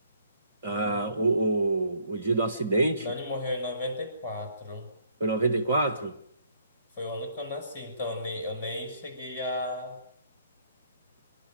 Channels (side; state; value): both; inverted; correlation -0.66